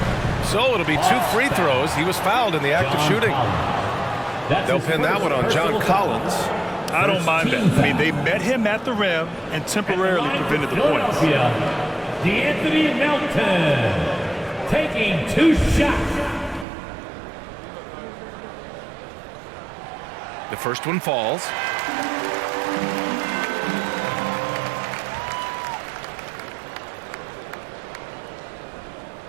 So it'll be 2 free throws. He was fouled in the act of shooting. They'll pin that one on John Collins. I don't mind that. I mean, they met him at the rim and temporarily prevented the points. D'Anthony Melton taking 2 shots. The first one falls.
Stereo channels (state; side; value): drops out; left; at 16.7 s